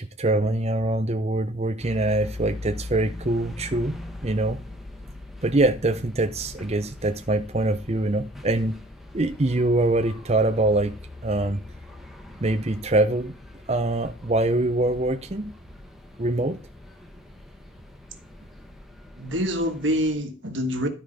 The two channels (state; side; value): normal; both; correlation 0.52